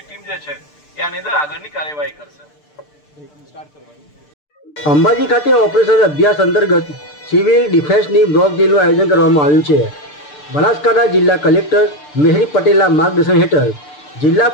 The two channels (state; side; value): late; right; 6.7 ms